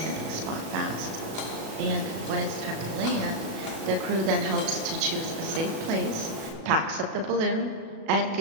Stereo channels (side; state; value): left; late; 37 ms